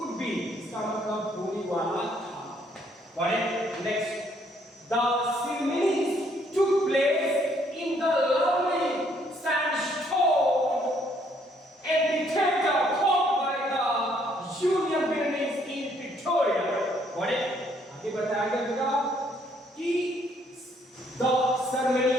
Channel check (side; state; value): both; normal; correlation 0.67